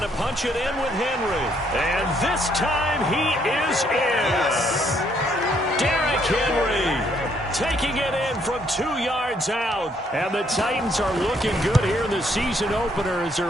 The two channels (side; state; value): both; normal; correlation 0.69